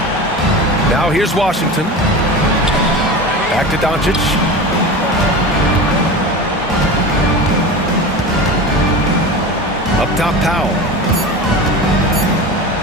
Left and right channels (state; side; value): normal; both; correlation 0.29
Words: Now here's Washington. Back to Doncic. Up top, Powell.